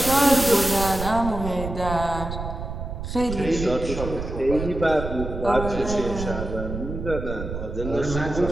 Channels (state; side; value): noise; right; rumble, 6 dB below the sound